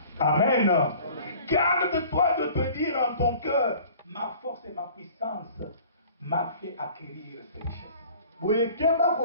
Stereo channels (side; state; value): both; inverted; correlation -0.48